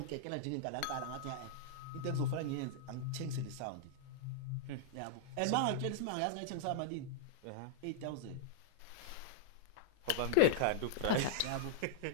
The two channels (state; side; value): different; both; correlation -0.02